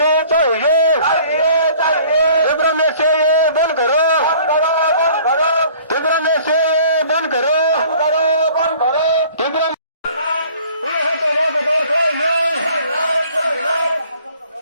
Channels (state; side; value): inverted; both; correlation -0.52